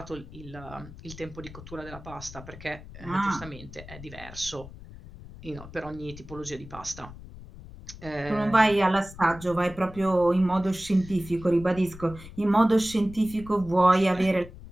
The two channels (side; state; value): left; noise; rumble, 16 dB below the sound